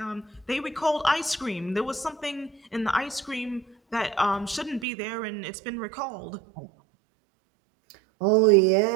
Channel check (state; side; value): drops out; left; at 4.9 s